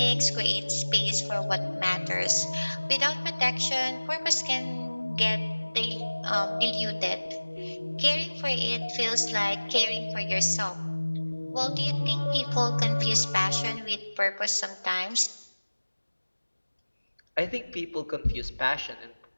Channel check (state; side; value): inverted; both; correlation -1.00